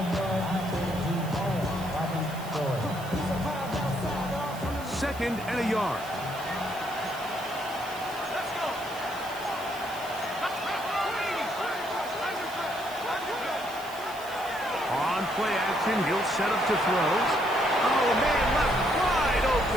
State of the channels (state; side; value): noise; right; hiss, 17 dB below the sound